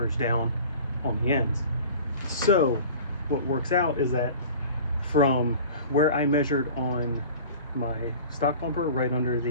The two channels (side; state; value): both; inverted; correlation -0.41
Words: down on the ends. So what works out is that from where I measured on my stock bumper, right under